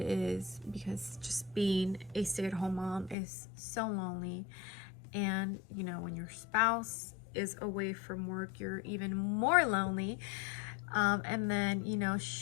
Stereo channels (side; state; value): right; drops out; at 3.2 s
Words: because just being a stay-at-home mom is so lonely. And, you know, when your spouse is away from work, you're even more lonely. And then, you know,